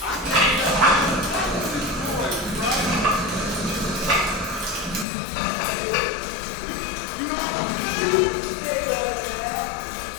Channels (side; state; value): right; drops out; at 5.1 s